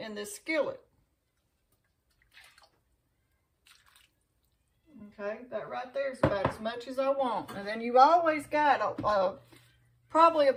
this skillet. Okay, that right there is about as much as I want. And then you always got probably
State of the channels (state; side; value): identical; both; correlation 1.00